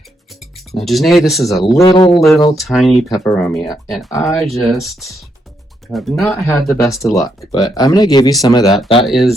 Now, Janeé, this is a little tiny Peperomia, and I just have not had the best of luck, but I'm going to give you some of that. That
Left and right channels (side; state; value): both; normal; correlation 0.78